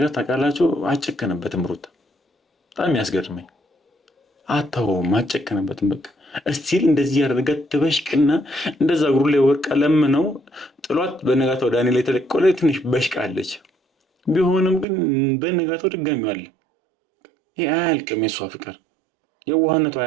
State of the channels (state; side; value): drops out; left; at 14.9 s